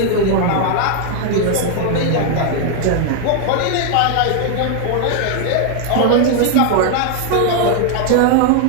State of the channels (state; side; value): different; both; correlation 0.00